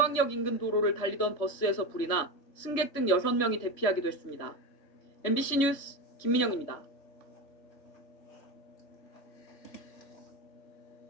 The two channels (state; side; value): late; right; 3.5 ms